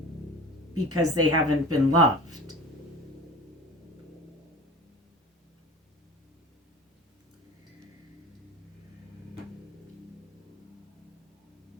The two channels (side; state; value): both; normal; correlation 0.37